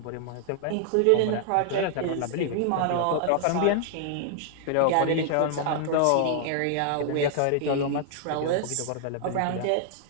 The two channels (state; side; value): different; both; correlation -0.01